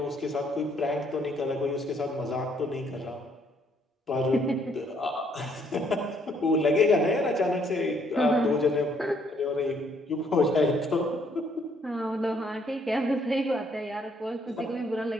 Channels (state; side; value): normal; both; correlation 0.67